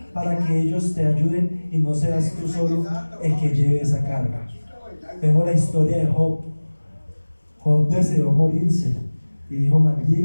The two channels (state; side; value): inverted; both; correlation -1.00